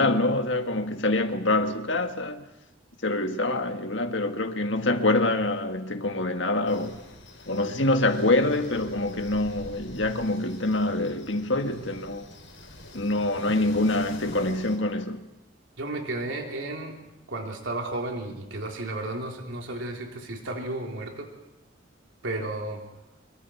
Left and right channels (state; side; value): normal; both; correlation 0.11